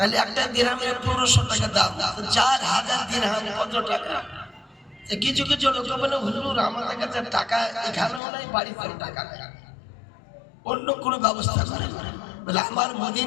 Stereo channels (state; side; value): drops out; right; at 8.2 s